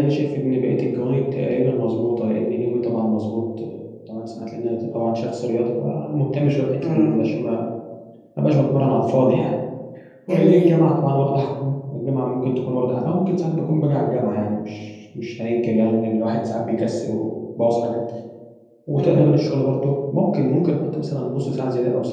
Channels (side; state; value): both; identical; correlation 1.00